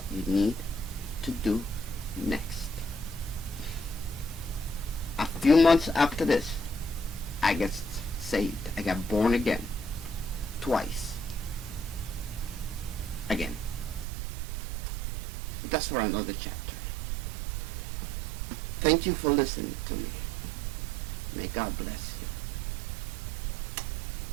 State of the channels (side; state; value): left; drops out; at 14.1 s